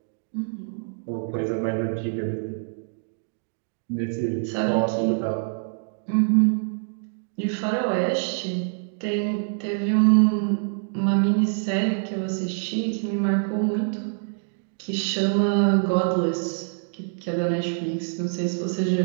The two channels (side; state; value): left; silent; digital silence